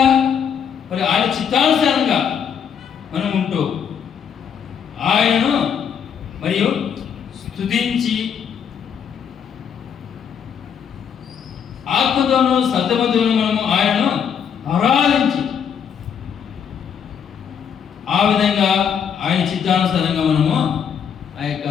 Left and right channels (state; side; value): quieter; right; 7.7 dB